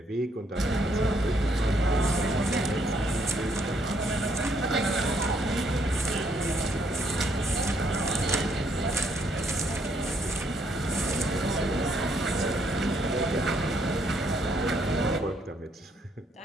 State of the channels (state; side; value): normal; both; correlation 0.71